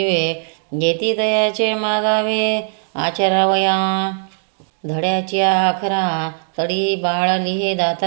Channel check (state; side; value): silent; left; digital silence